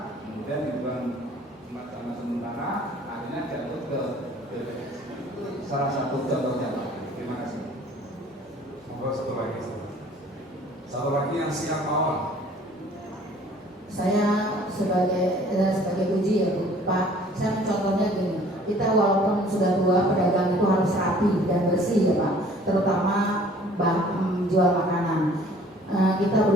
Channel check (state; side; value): normal; both; correlation 0.53